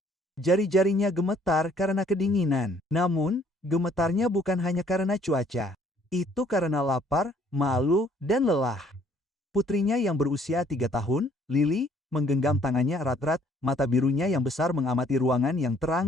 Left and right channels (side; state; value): both; normal; correlation 0.62